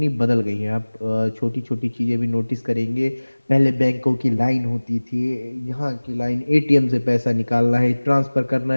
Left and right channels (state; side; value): inverted; both; correlation -1.00